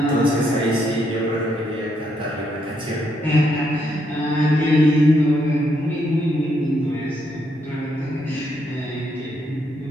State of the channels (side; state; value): both; normal; correlation 0.76